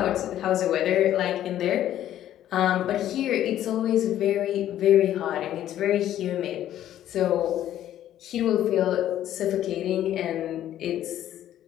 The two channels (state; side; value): quieter; right; 12.0 dB